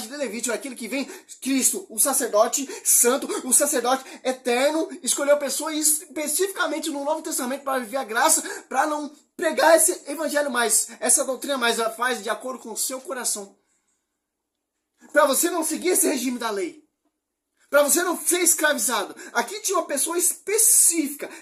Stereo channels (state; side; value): identical; both; correlation 1.00